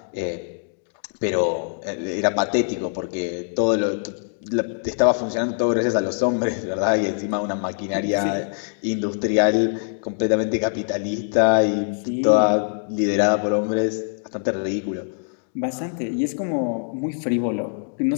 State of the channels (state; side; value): silent; right; digital silence